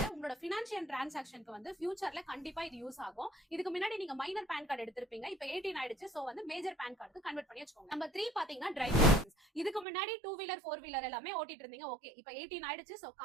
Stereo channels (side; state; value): left; drops out; at 9.9 s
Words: உங்களோட பினான்சியல் டிரான்சாக்ஷனுக்கு வந்து ஃபியூச்சர்ல கண்டிப்பா இது யூஸ் ஆகும். இதுக்கு முன்னாடி நீங்க மைனர் பேன் கார்டு எடுத்திருப்பீங்க, இப்ப 18 ஆயிடுச்சு, சோ வந்து மேஜர் பேன் கார்டுக்கு கன்வெர்ட் பண்ணி வச்சுக்கோங்க. நம்பர் 3 பாத்தீங்கன்னா டிரைவிங் லைசன்ஸ். இதுக்கு முன்னாடி 2 வீலர் 4 வீலர் எல்லாமே ஓட்டிட்டு இருந்தீங்க, ஓகே, இப்ப 18 ஆயிடுச்சு, சோ